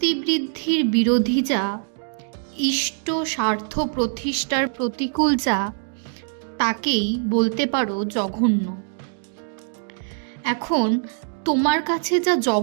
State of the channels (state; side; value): silent; left; 63 dB below the other